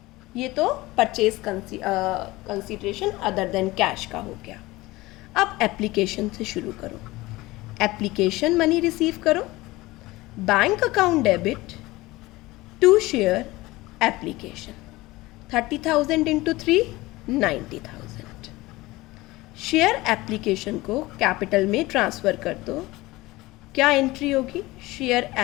ये तो purchase consideration other than cash का हो गया। अब एप्लीकेशन से शुरू करो। एप्लीकेशन मनी रिसीव करो। Bank account debit to share application, 30,000 into 3, 90,000। Share application को कैपिटल में ट्रांसफ़र कर दो। क्या एंट्री होगी? Share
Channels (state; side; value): quieter; right; 19.9 dB